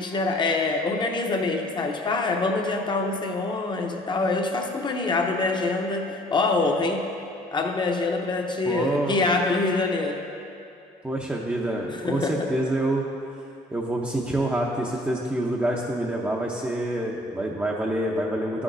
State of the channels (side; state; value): both; normal; correlation 0.55